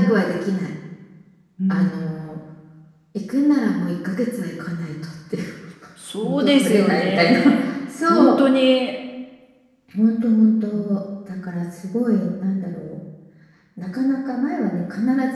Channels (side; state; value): both; identical; correlation 1.00